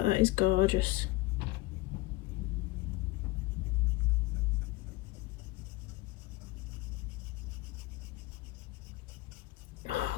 that is gorgeous. Oh,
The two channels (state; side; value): quieter; right; 19.8 dB